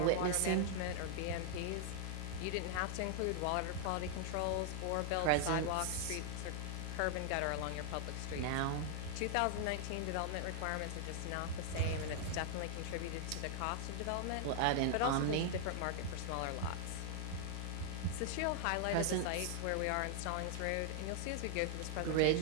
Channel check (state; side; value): different; both; correlation 0.00